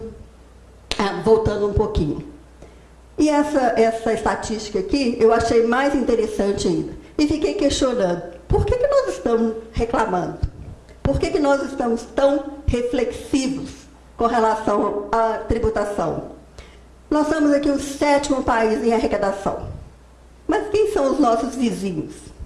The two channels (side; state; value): both; identical; correlation 1.00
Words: voltando um pouquinho. E essa estatística aqui, eu achei mais interessante ainda. E fiquei questionando, por que nós estamos reclamando? Por que nós estamos tão reflexivos com relação à tributação? Nós somos aqui o 7º país em arrecadação. Mas quem são os nossos vizinhos?